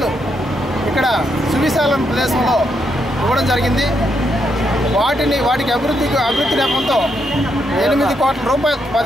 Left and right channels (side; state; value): both; normal; correlation 0.78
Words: ఇక్కడ సువిశాల ప్రదేశంలో ఇవ్వడం జరిగింది. వాటికి అభివృద్ధి నేపంతో 8 కోట్ల రూపాయలు